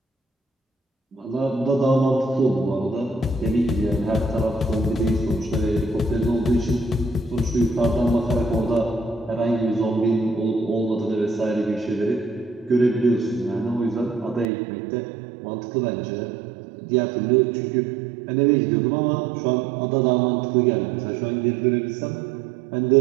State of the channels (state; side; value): drops out; left; at 14.5 s